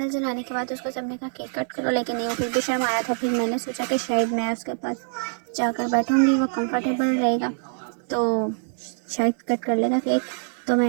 जलाने के बाद उसको सबने कहा केक कट करो, लेकिन नहीं, वो फिर भी शर्माया था। फिर मैंने सोचा कि शायद मैं उसके पास जाकर बैठूंगी, वो कंफर्टेबल रहेगा तो शायद कट कर लेगा केक। तो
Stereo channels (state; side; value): silent; left; 62 dB below the other